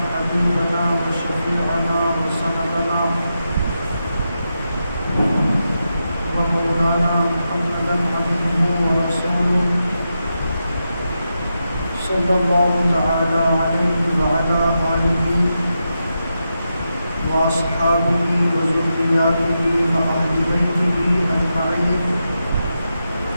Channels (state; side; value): inverted; both; correlation -0.87